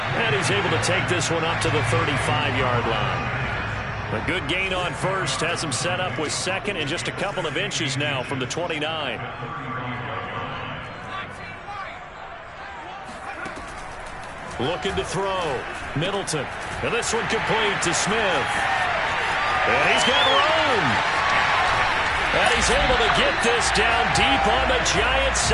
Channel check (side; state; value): both; identical; correlation 1.00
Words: And he's able to take this one up to the 35-yard line. A good gain on first has him set up with 2nd and just a couple of inches now from the 29. Looking to throw. Middleton. And this one complete to Smith. And he's got room. And he's able to get this down deep on the Giants